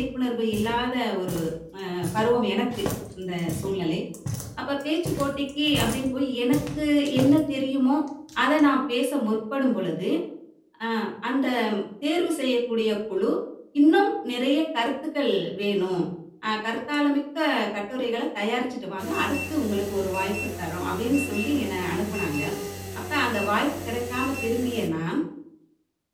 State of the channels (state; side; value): identical; both; correlation 1.00